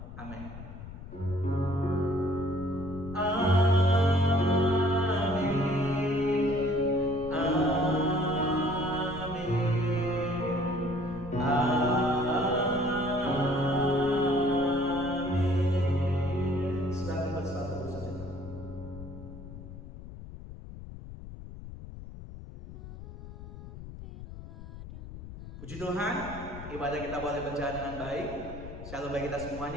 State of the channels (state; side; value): noise; left; rumble, 13 dB below the sound